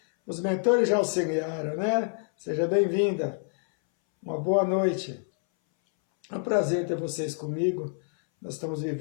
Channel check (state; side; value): silent; right; 60 dB below the other